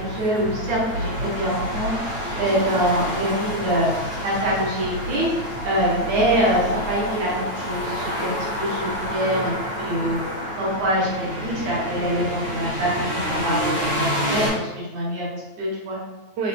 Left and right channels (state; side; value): late; left; 9.1 ms